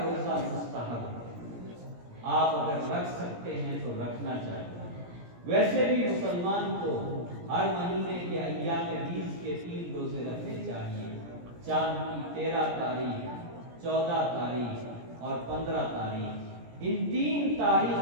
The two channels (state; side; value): late; left; 17 ms